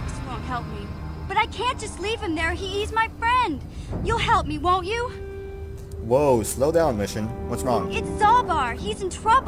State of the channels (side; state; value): both; identical; correlation 1.00